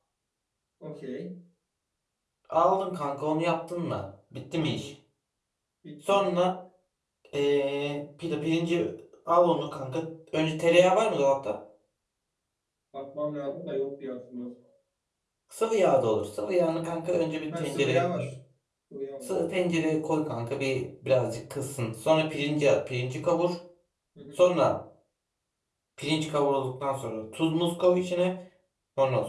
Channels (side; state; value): both; identical; correlation 1.00